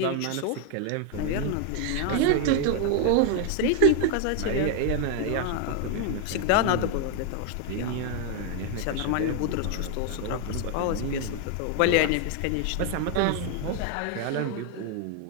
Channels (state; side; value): different; both; correlation 0.01